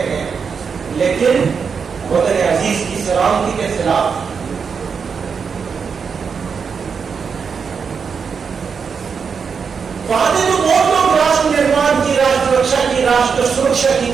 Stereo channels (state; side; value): quieter; left; 6.0 dB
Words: ہیں, لیکن وطن عزیز کی سلامتی کے خلاف. وعدے تو بہت لوگ راشٹر نرمان کی, راشٹر رکشا کی, راشٹر سرکشا کی